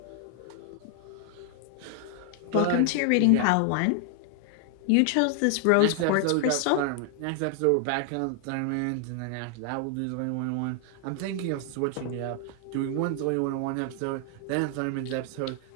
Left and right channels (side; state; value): both; different; correlation 0.00